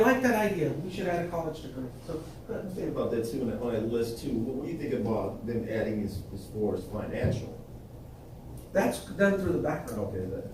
that idea. We should add a college degree. So, Think about that too, on that list too. What do you think about them adding as far as financial? that's done through the background. Okay,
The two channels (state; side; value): identical; both; correlation 1.00